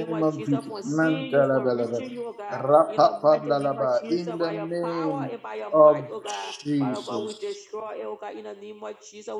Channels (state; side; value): identical; both; correlation 1.00